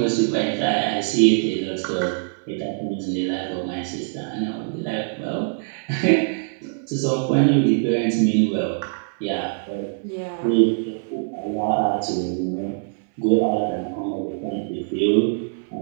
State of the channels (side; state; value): left; silent; 63 dB below the other